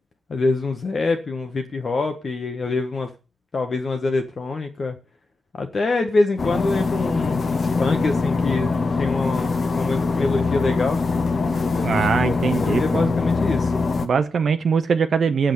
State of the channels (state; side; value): normal; both; correlation 0.87